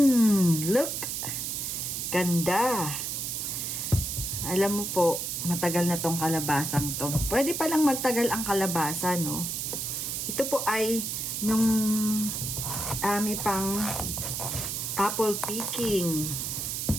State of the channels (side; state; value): right; noise; hiss, 3 dB below the sound